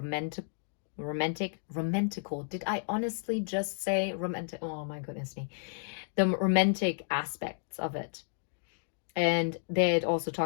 Did I honestly just say romantic? Oh my goodness me. The romantic aspects of it. And they had also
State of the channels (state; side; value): silent; right; digital silence